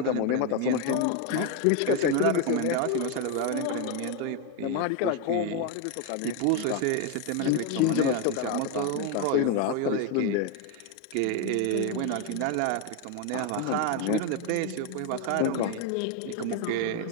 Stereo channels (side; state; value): both; different; correlation 0.02